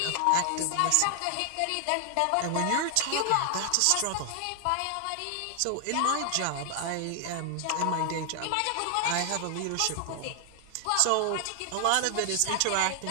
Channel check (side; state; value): both; different; correlation 0.00